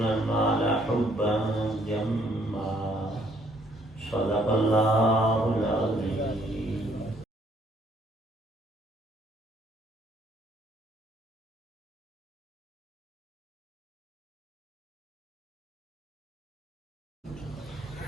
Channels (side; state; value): both; normal; correlation 0.66